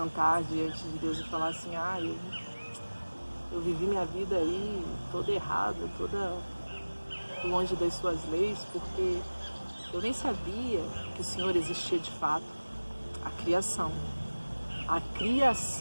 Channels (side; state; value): both; inverted; correlation -1.00